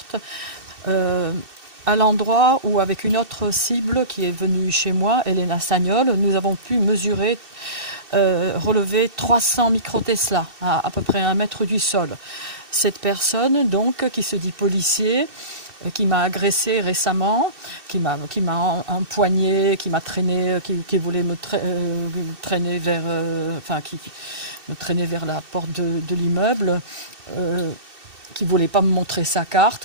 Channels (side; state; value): left; late; 2.7 ms